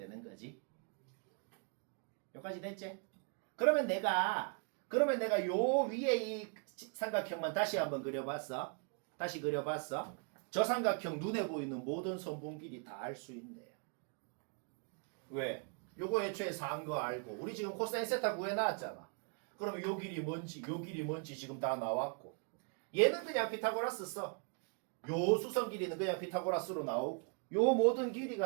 거지. 여기까지 됐지? 그러면 내가 요 위에 이 삼각형만 다시 한번 그려봤어. 다시 그려봤어. 저 삼각형 눈에 보이는 모든 선분 길이 다 알 수 있네요. 왜? 요거 애초에 4인 거 알고 우리 지금 코사인 세타 구해놨잖아. 그럼 요 길이 뭔지 요 길이 뭔지 지금 다 나왔고 얘는 그냥 피타고라스 써. 요 수선 길이는 그냥 피타고라스로 나오고 요 모든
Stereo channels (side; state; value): left; quieter; 38.3 dB